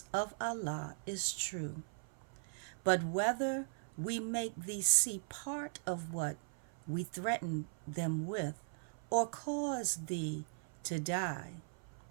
of Allah is true. But whether we make thee see part of what we threaten them with, or cause thee to die,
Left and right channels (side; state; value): left; silent; 52 dB below the other